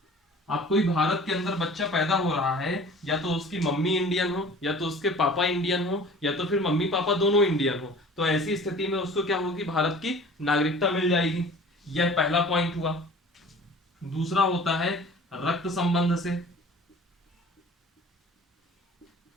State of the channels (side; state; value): both; normal; correlation 0.45